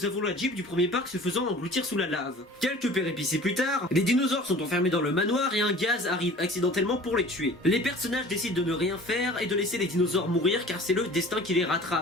avons la Jeep du premier parc se faisant engloutir sous la lave. Quelques péripéties plus tard, les dinosaures sont enfermés dans le manoir et un gaz arrive accidentellement pour les tuer. Les personnages décident de ne rien faire et de laisser les dinosaures mourir car c'est le destin qui les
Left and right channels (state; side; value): normal; both; correlation 0.44